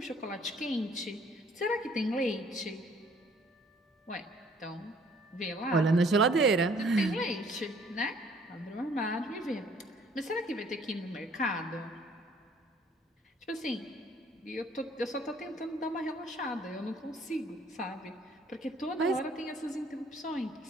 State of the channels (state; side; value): normal; both; correlation 0.59